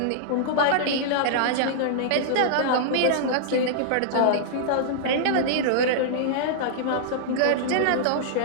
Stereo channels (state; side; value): different; both; correlation -0.02